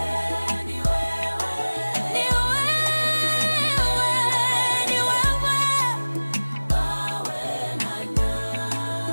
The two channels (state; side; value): inverted; both; correlation -1.00